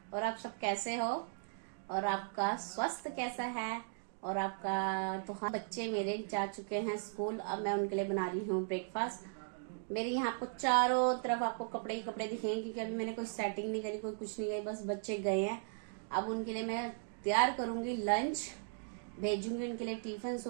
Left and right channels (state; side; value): silent; left; digital silence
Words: और आप सब कैसे हो और आपका स्वास्थ्य कैसा है? और आपका तो हाँ, बच्चे मेरे जा चुके हैं स्कूल। अब मैं उनके लिए बना रही हूँ ब्रेकफास्ट। मेरे यहाँ आपको चारों तरफ आपको कपड़े ही कपड़े दिखेंगे, क्योंकि अभी मैंने कोई सेटिंग नहीं करी, कोई कुछ नहीं करी, बस बच्चे गए हैं। अब उनके लिए मैं तैयार करूंगी लंच, भेजूंगी उनके लिए टिफिन।